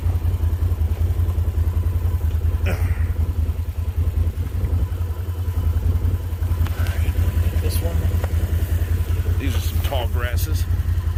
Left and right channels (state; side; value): identical; both; correlation 1.00